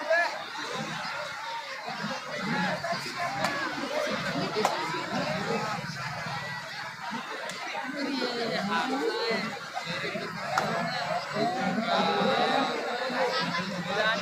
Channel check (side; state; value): both; identical; correlation 1.00